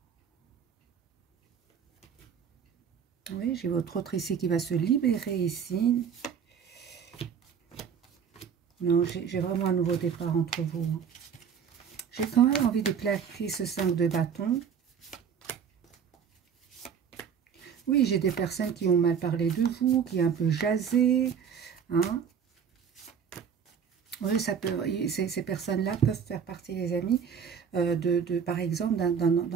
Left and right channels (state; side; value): quieter; left; 7.3 dB